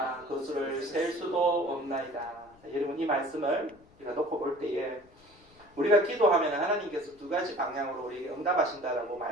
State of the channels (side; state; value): left; noise; rumble, 28 dB below the sound